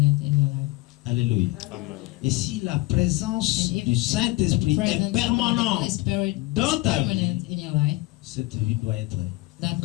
in your life. Alléluia. Et si la présence And if du Saint-Esprit The est presence of the Holy permanente Spirit dans is ta vie, permanent in your life, cette vie doit être that life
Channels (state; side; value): quieter; right; 20.7 dB